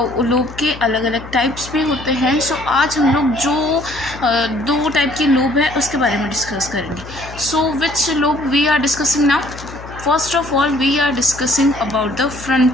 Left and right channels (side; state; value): left; noise; hum, 15 dB below the sound